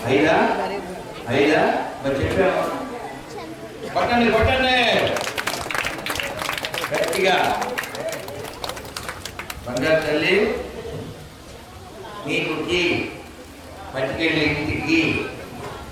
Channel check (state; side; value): identical; both; correlation 1.00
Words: ఐదా? ఐదా? మరి చెప్పాము. కొట్టండి కొట్టండి గట్టిగా. బంగారు తల్లి నీకు పట్టుకెళ్ళి ఇంటికి.